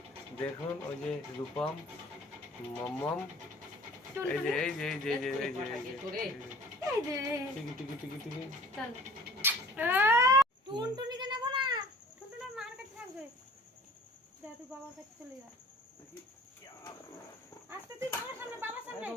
দেখুন ওই যে রূপম, মম, এই যে এই যে এই যে এই যে এই যে এই যে টিকি টিকি টিকি টিকি চল। টুনটুনিকে নেবো না, টুনটুনি মার কাছে থাকবে। যা তুই বাবার কাছে চলে যা। আস্তে তুই বাবার সামনে, বাবার সামনে।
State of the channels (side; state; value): both; normal; correlation 0.48